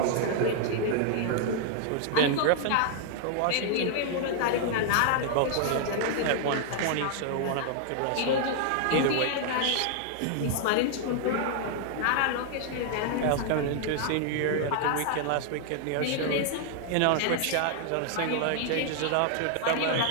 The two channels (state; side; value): different; both; correlation 0.00